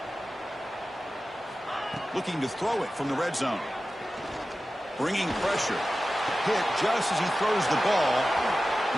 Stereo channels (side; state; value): both; normal; correlation 0.94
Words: Looking to throw it from the red zone. Bringing pressure. Hit just as he throws the ball.